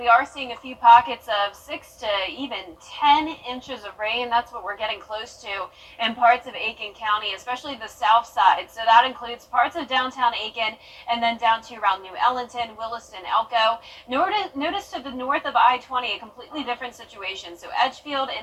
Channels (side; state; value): both; identical; correlation 1.00